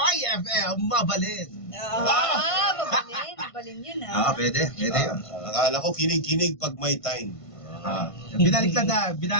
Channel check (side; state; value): right; late; 1.5 ms